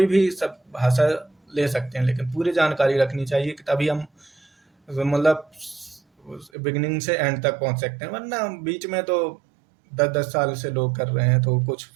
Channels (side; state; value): left; drops out; at 6.5 s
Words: भी सब भाषा ले सकते हैं, लेकिन पूरी जानकारी रखनी चाहिए कि तभी हम मतलब बिगिनिंग से एंड तक पहुंच सकते हैं। वरना बीच में तो 10-10 साल से लोग कर रहे हैं तो कुछ